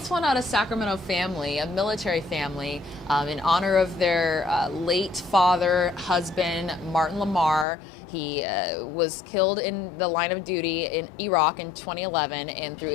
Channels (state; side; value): drops out; right; at 7.7 s